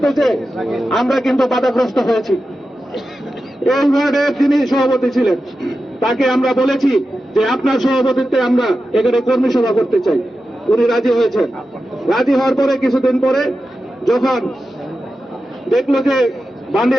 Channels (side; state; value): both; normal; correlation 0.92